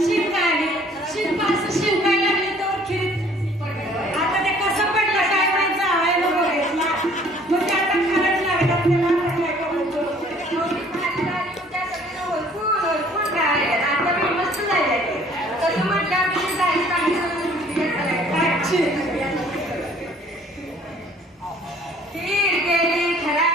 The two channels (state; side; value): normal; both; correlation 0.56